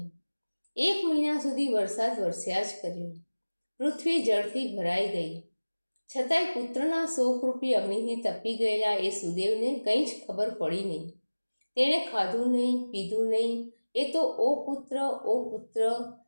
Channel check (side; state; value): both; inverted; correlation -1.00